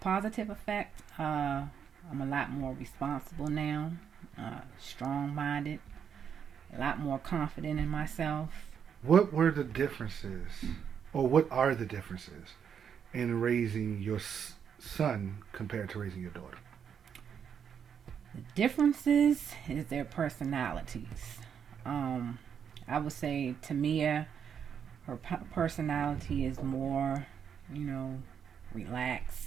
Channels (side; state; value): left; quieter; 7.7 dB